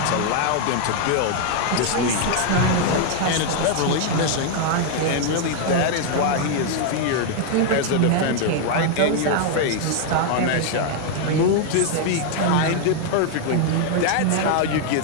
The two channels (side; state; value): both; different; correlation 0.00